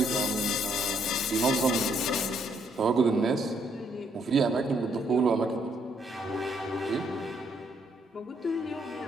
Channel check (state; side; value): normal; both; correlation 0.70